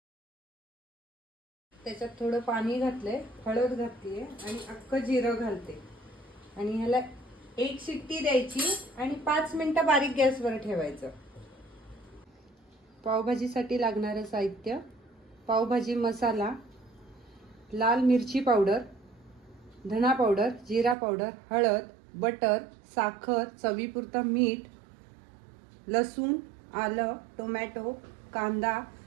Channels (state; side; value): drops out; left; at 21.0 s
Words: त्याच्यात थोडं पाणी घातले, हळद घातली आणि अख्खं जिरं घालते आणि ह्याला 1 शिट्टी द्यायची आणि 5 मिनिटं बारीक गॅसवर ठेवायचं। पावभाजीसाठी लागणारे साहित्य: पावभाजी मसाला, लाल मिरची पावडर, धना पावडर, जिरा पावडर, हळद, बटर, साखर, चवीपुरतं मीठ, लसूण, आलं, टोमॅटो, कांदा,